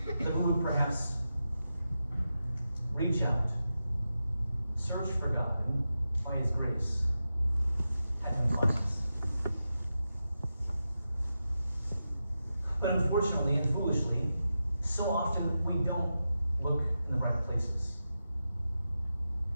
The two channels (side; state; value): both; inverted; correlation -0.90